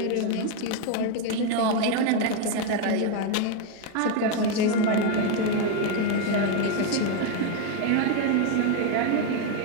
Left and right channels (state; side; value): different; both; correlation 0.01